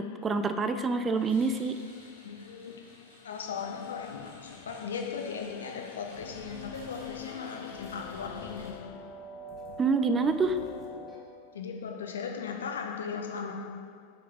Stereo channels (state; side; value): normal; both; correlation 0.36